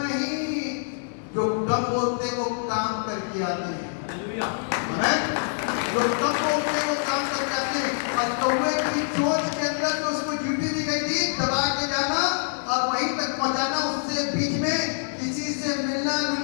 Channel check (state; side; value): silent; right; 61 dB below the other